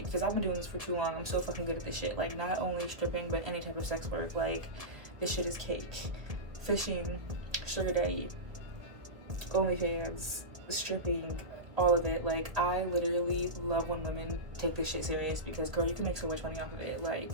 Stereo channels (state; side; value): late; left; 1.6 ms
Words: because I've been doing this for too long. I'm so fucking good at this shit. Like, not only stripping, but any type of sex work. Like, this shit is cake. Fishing, sugar daddy, OnlyFans, stripping, all of it. Like, I literally love when women take this shit serious, because girl, you can make so much money off of it. Like,